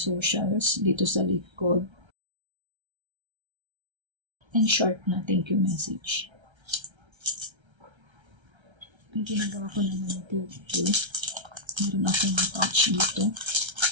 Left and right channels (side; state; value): left; late; 1.3 ms